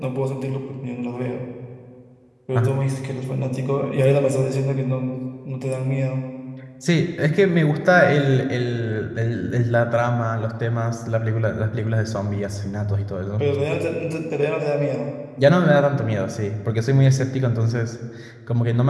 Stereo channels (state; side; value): identical; both; correlation 1.00